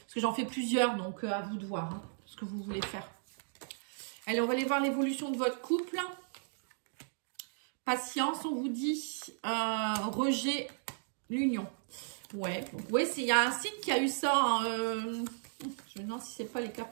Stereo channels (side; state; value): left; silent; digital silence